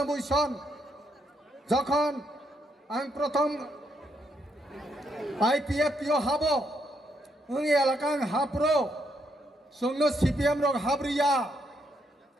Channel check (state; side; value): normal; both; correlation 0.77